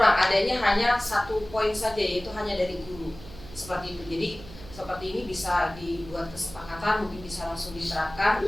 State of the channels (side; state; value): right; noise; hum, 17 dB below the sound